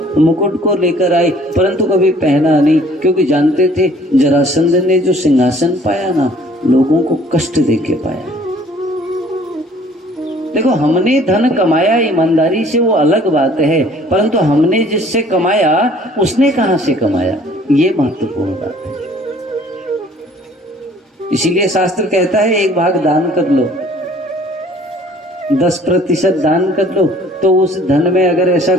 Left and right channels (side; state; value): both; normal; correlation 0.56